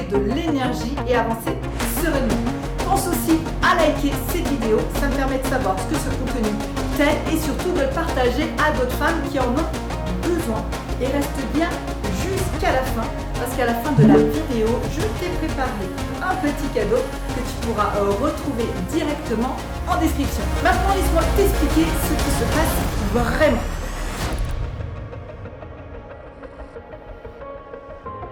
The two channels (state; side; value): identical; both; correlation 1.00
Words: de l'énergie et avancer sereinement. Pense aussi à liker cette vidéo, ça me permet de savoir ce que ce contenu t'aide et surtout de le partager à d'autres femmes qui en ont besoin. Et reste bien jusqu'à la fin, parce qu'à la fin de la vidéo, je t'ai préparé un petit cadeau que tu pourras retrouver directement en description. Maintenant, laisse-moi t'expliquer ce qui se passe vraiment.